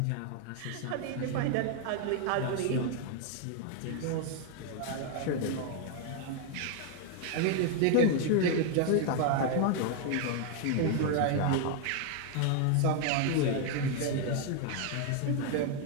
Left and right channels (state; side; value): different; both; correlation 0.00